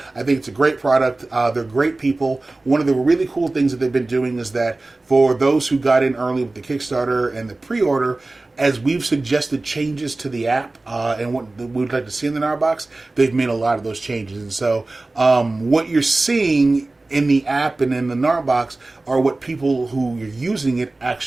think it's a great product. They're great people. One of the really cool things that they've been doing is that for those who got in early with the Kickstarter and the pre-order, as we've suggested changes to the app and what we'd like to see in the Gnarbox, they've made a lot of those changes. And so what you're seeing in the app and in the Gnarbox are what people who are using it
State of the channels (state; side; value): quieter; left; 3.1 dB